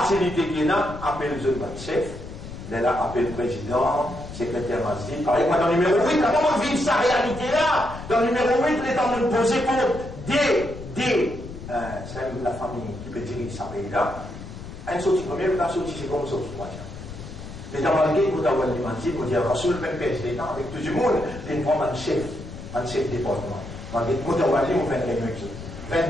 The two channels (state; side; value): noise; left; rumble, 12 dB below the sound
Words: qu'il y a, appelle le chef, là, appelle le président, secrétaire masjid. Par exemple, dans le numéro 8, comment on vit sa réalité là? Dans le numéro 8, il est en train de poser pour c'est la famille qui peut diriger sa pays là. Un sorti premier, la sortie seconde, sortie troisième. Les Damalgués, vous avez dit, vous avez Rasoul, même président, avec tout le monde, ils prennent un chef département. Vous avez dit, vous avez dit, vous faites un réunion.